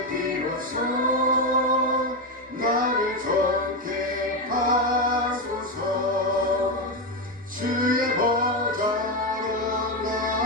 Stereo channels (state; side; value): normal; both; correlation 0.10